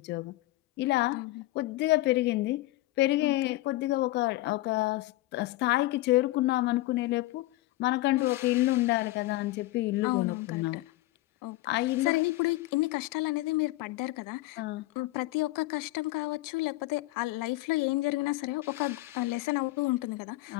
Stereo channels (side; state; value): right; quieter; 18.2 dB